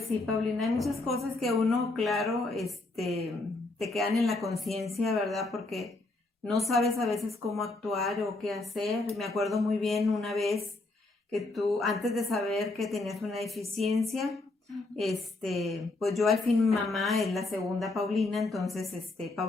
sí, Paulina, hay muchas cosas que uno, claro, te quedan en la conciencia, ¿verdad? Porque no sabes a veces cómo actuar o qué hacer. Me acuerdo muy bien una vez que tú, antes de saber que tenías una deficiencia, pues yo al fin mi mamá es la segunda Paulina, entonces,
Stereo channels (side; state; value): right; quieter; 3.1 dB